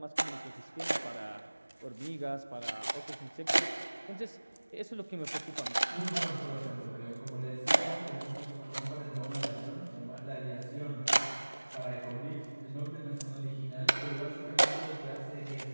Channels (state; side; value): inverted; both; correlation -1.00